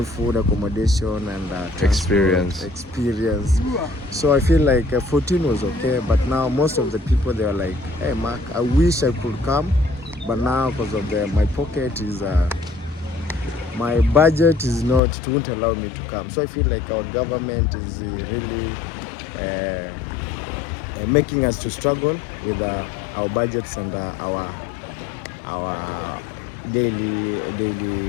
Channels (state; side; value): drops out; right; at 15.0 s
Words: food, accommodation, and Experience. Experience. So I feel like 14 was okay, but now most of the people, they are like, "Hey, Mark, I wish I could come, but now because of my pocket is, my budget is not, it won't allow me to come." So I feel like our government is really making us to struggle with our budgets and our daily